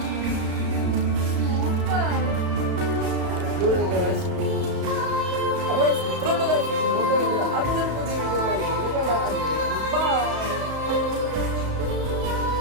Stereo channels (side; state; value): left; late; 34 ms